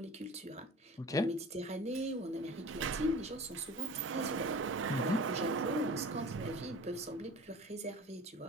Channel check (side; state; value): both; normal; correlation 0.40